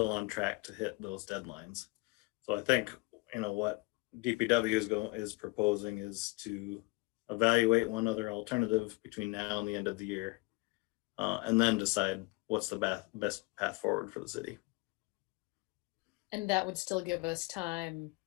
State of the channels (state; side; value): quieter; right; 25.4 dB